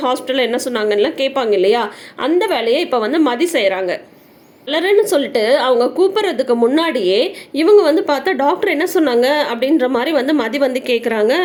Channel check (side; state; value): both; identical; correlation 1.00